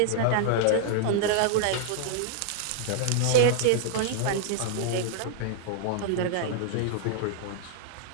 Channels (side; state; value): both; different; correlation -0.01